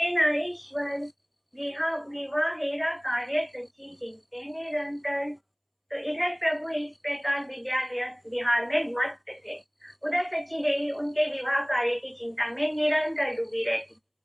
न ईश्वर विवाहेरा कार्य सच्ची चिंते निरंतर। तो इधर प्रभु इस प्रकार विहार में मस्त थे, उधर सच्ची देवी उनके विवाह कार्य की चिंता में निरंतर डूबी रहती।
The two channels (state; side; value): identical; both; correlation 1.00